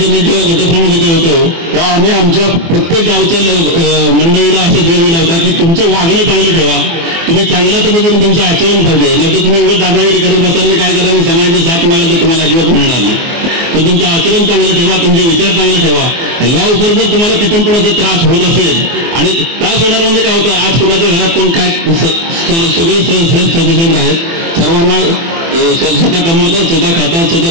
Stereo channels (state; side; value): late; left; 24 ms